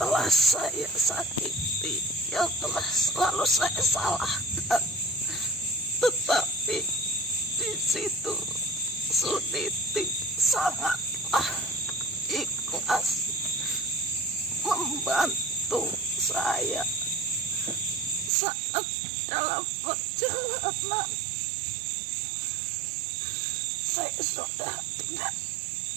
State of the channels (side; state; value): left; drops out; at 18.3 s